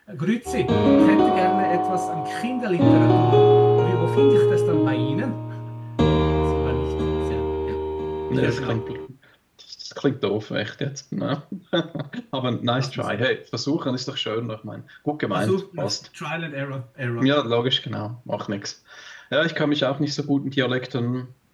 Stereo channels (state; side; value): identical; both; correlation 1.00